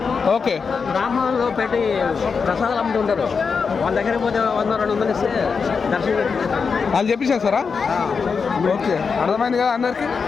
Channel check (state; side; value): quieter; right; 5.5 dB